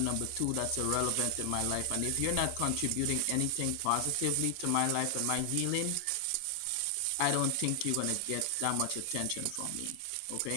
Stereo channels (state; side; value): different; both; correlation 0.00